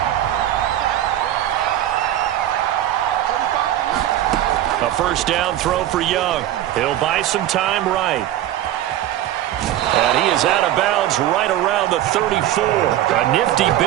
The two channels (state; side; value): quieter; left; 12.8 dB